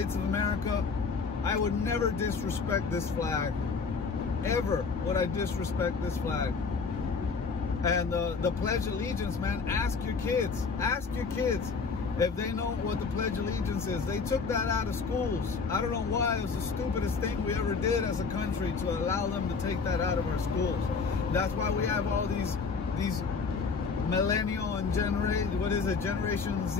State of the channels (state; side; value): quieter; right; 4.9 dB